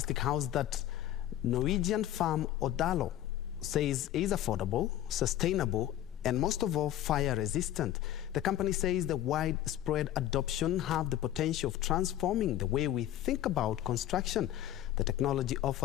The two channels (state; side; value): quieter; right; 12.8 dB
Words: house that Norwegian firm OTHALO says is affordable, sustainable, and most of all, fire-resistant. The company says the widespread adoption have the potential of transforming the way we think about construction. The technology